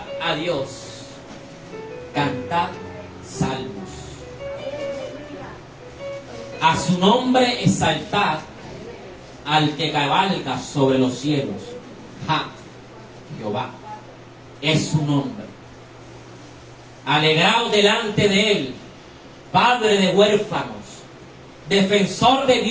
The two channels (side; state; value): both; identical; correlation 1.00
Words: a Dios, cantad salmos, a su nombre exaltad al que cabalga sobre los cielos. Jehová es su nombre. Alegraos delante de él, padre de huérfanos, defensor de